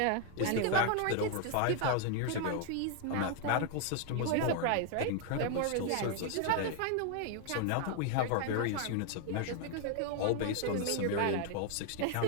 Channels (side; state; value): both; different; correlation 0.00